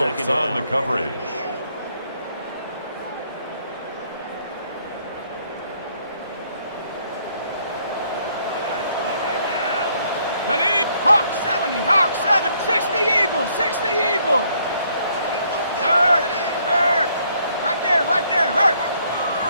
on the down. coverage. Ready? Hawk 70. 60 Eagle. Hurt. Right there. Hurt.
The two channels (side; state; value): both; inverted; correlation -0.68